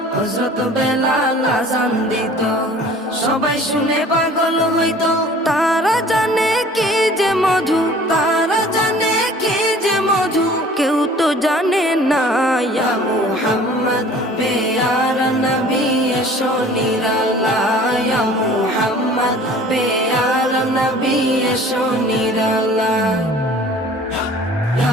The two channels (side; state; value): both; normal; correlation 0.48